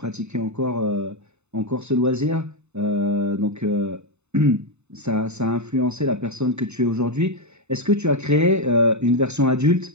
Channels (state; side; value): late; left; 0.82 ms